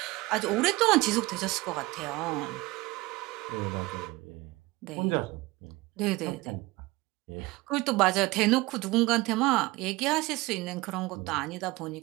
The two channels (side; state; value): left; quieter; 21.3 dB